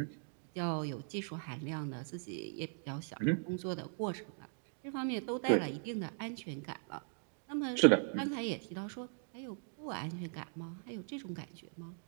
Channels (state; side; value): silent; left; digital silence